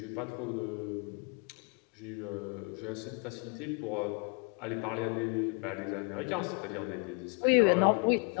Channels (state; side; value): quieter; right; 35.7 dB